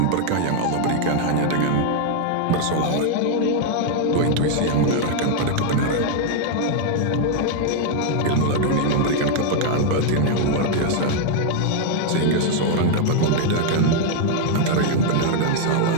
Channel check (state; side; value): different; both; correlation 0.00